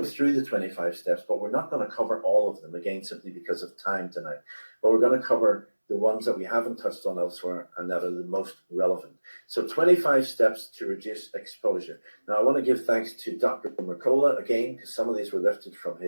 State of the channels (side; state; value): both; inverted; correlation -1.00